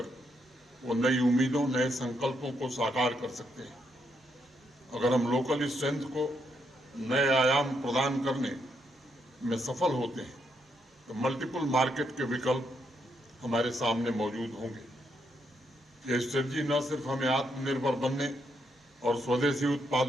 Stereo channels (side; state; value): both; normal; correlation 0.78